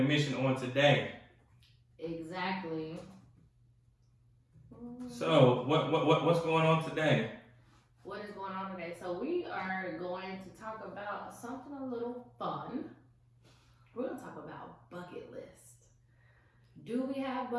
on today. Exactly. So what's going on today? What is going on today? So we are going to talk about something a little fun. We're going to talk about bucket list. Do we have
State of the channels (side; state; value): both; identical; correlation 1.00